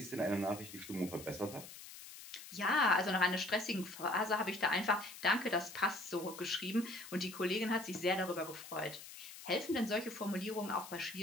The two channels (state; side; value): noise; left; hiss, 14 dB below the sound